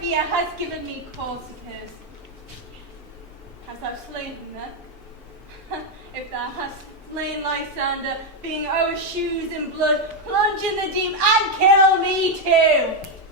fear, hast given me cause to curse. Hast thou slain him then? If thou hast, slain Lysander, being our shoes in blood, plunge in the deep and kill me too.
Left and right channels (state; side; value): normal; both; correlation 0.03